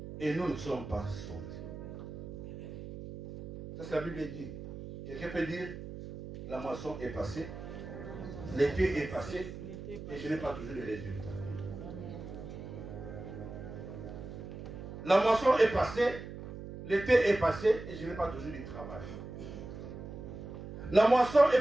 Et nous ne sommes pas sauvés. Ça, c'est la Bible dit. Quelqu'un peut dire, la moisson est passée, l'été est passé, et je n'ai pas toujours de résultats. La moisson est passée, l'été est passé, et je n'ai pas toujours du travail. La moisson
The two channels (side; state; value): right; noise; hum, 10 dB below the sound